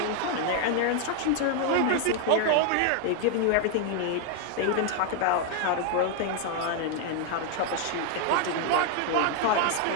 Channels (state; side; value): different; both; correlation 0.00